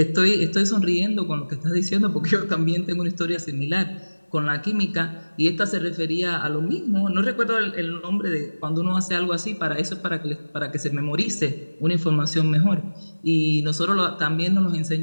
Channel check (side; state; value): both; inverted; correlation -1.00